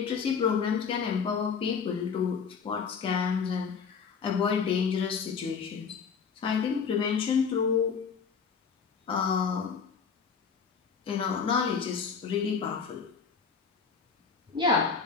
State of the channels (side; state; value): right; quieter; 6.0 dB